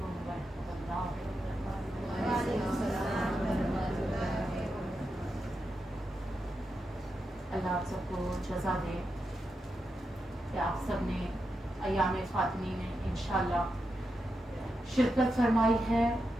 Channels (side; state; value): both; normal; correlation 0.87